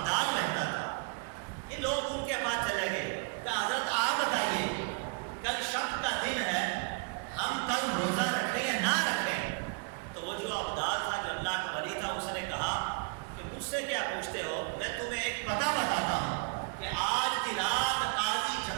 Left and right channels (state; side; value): quieter; left; 33.7 dB